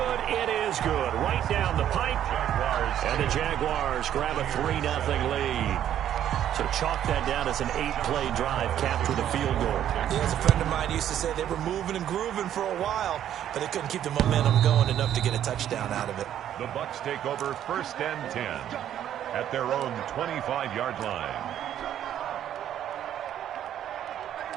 It is good. Right down the pipe. And the Jaguars grab a 3-0 lead. So chalk that down as an 8-play drive capped with a field goal. Yeah, as a friend of mine used to say, they were moving and grooving for a while, but they couldn't keep the momentum going enough to get a touchdown out of it. The Bucs take over 1st and 10 at their own 25-yard line.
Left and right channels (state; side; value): quieter; left; 10.8 dB